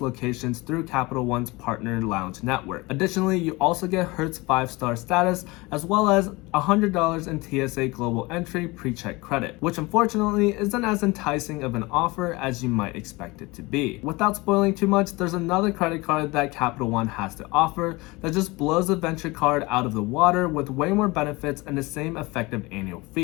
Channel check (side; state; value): right; quieter; 23.4 dB